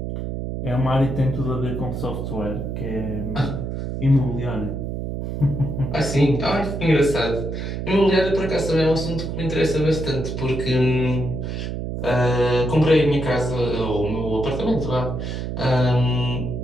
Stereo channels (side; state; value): right; noise; hum, 4 dB below the sound